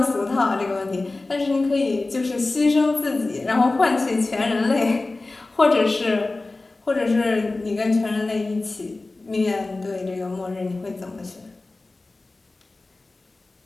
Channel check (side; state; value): right; quieter; 3.2 dB